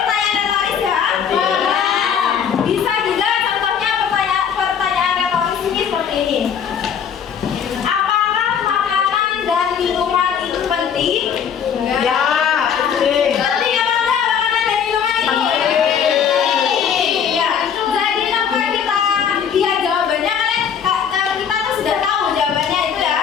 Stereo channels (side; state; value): right; quieter; 7.7 dB